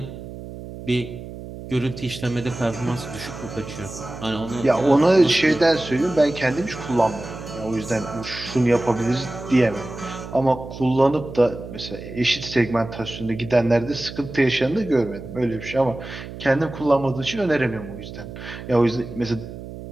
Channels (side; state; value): right; noise; hum, 12 dB below the sound